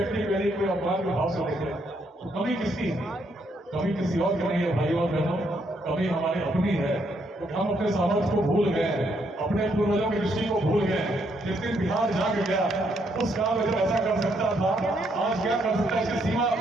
के लिए कोई अपमान के भाव से देखे तो कमी किसकी है? कमी किसी और की नहीं है भाइयों और बहनों, कमी हमारी अपनी है। तो हम अपने सामर्थ्य को भूल गए हैं, अपने पूर्वजों की दृष्टि को भूल गए हैं। जिस दिन बिहार जाग गया, उस काल में जब ऐसा कर सकता था, आज क्या कर सकता है इसकी सीमा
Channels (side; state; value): both; normal; correlation 0.74